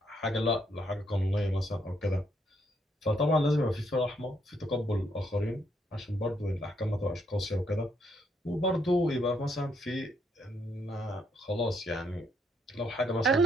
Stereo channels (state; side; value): normal; both; correlation 0.73